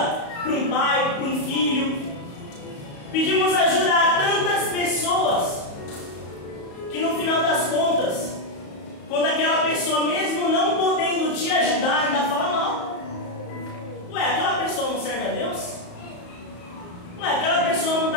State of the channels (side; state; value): right; late; 34 ms